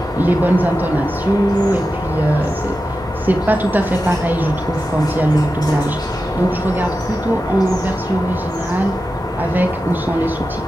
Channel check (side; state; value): both; normal; correlation 0.91